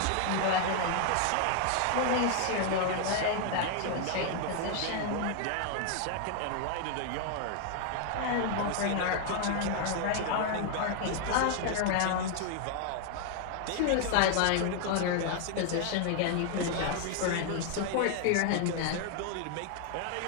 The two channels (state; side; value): different; both; correlation 0.00